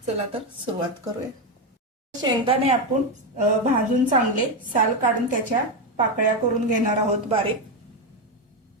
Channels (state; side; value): normal; both; correlation 0.09